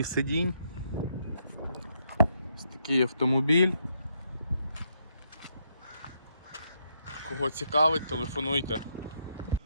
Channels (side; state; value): both; inverted; correlation -0.76